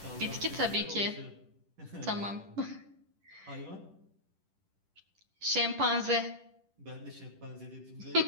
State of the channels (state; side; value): late; left; 10 ms